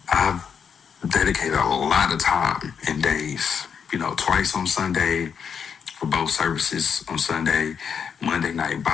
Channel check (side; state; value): right; quieter; 7.0 dB